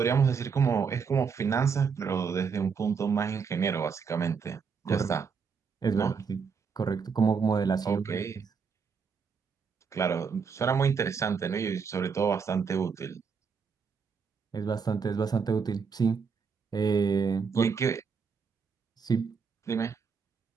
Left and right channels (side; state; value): left; quieter; 5.8 dB